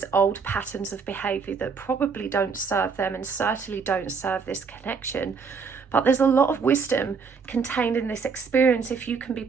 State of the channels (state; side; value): quieter; left; 5.5 dB